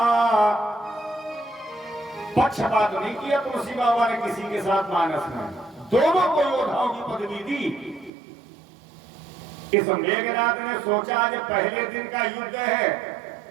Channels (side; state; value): left; drops out; at 8.1 s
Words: पक्षपात नहीं किया तुलसी बाबा ने किसी के साथ मानस में, दोनों को योद्धाओं की पदवी दी। इस मेघनाथ ने सोचा आज पहले दिन का युद्ध है,